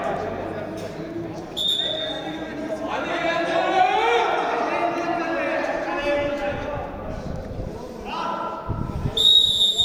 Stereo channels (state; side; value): identical; both; correlation 1.00